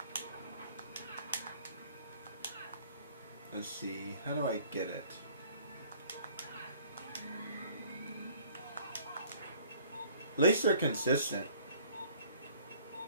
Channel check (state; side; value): inverted; both; correlation -0.55